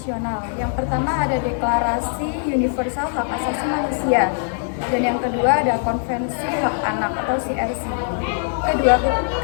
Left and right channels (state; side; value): silent; right; 61 dB below the other